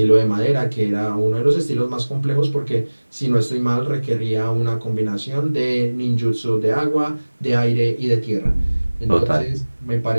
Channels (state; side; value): inverted; both; correlation -1.00